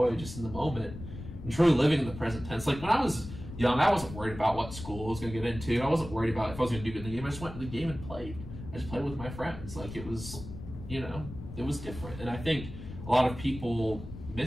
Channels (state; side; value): noise; left; rumble, 11 dB below the sound